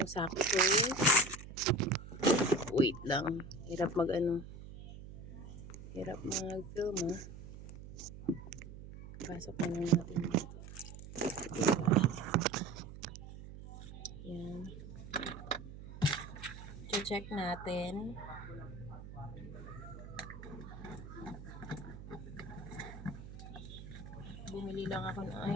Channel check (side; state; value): right; noise; hum, 13 dB below the sound